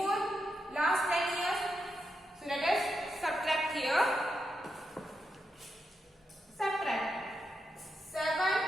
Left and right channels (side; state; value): both; normal; correlation 0.85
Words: last 10 years? So let us subtract here. Subtract 7